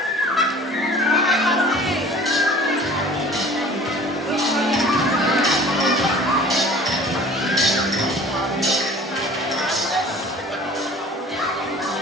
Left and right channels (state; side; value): normal; both; correlation 0.46